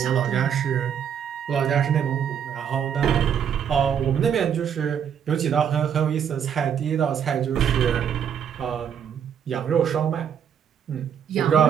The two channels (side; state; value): left; quieter; 8.3 dB